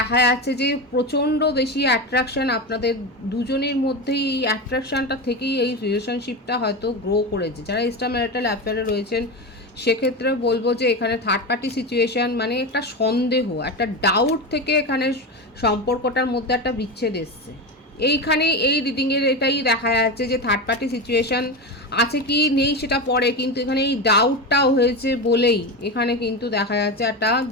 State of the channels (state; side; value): normal; both; correlation 0.19